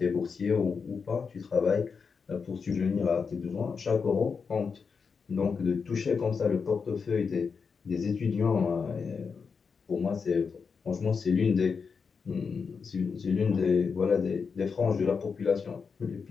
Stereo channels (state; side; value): quieter; right; 5.5 dB